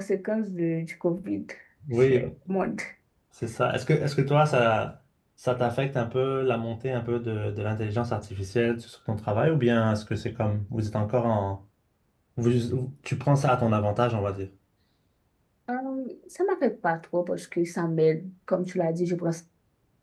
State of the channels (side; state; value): both; identical; correlation 1.00